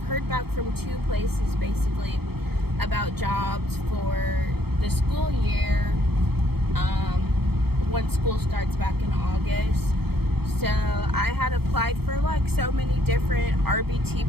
back from 2 places basically about jobs for the school year once school starts back in August. So I had applied for like so many different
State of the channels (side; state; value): left; late; 0.96 ms